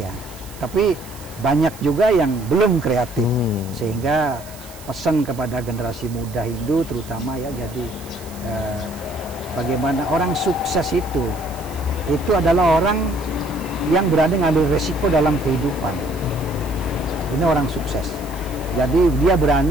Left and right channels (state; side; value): noise; right; hiss, 19 dB below the sound